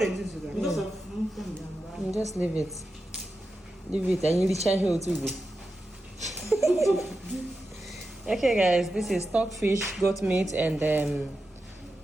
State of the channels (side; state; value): both; normal; correlation 0.90